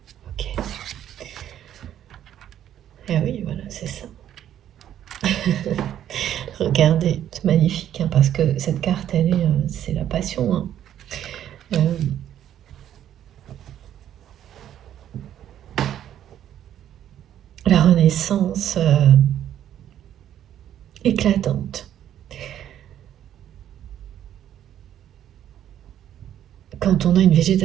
Ok. Ah oui, voilà, c'est ça. Regardez, c'est magnifique, parce que cette carte, c'est la passion. La renaissance éclatante. Quand on a une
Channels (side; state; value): left; quieter; 10.8 dB